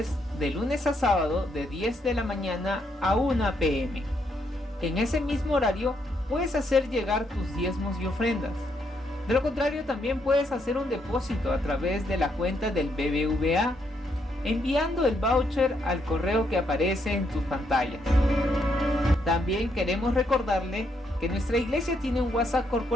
de lunes a sábado de 10 de la mañana a 1 p.m. En ese mismo horario puedes hacer llegar tus diezmos y ofrendas. De lo contrario, también puedes hacer un depósito a través de la cuenta del BBVA, enviando el voucher al correo que aparece en tus pantallas. También queremos recordarle que nuestra iglesia tiene un WhatsApp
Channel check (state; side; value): normal; both; correlation 0.76